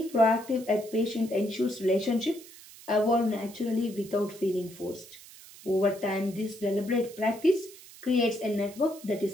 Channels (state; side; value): noise; right; hiss, 19 dB below the sound